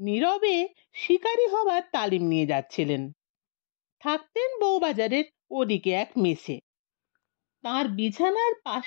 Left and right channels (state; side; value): silent; right; digital silence